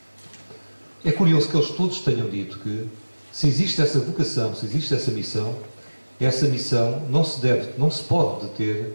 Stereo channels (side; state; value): both; inverted; correlation -1.00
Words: é curioso que eles todos tenham dito que, se existe essa vocação, se existe essa missão não se pode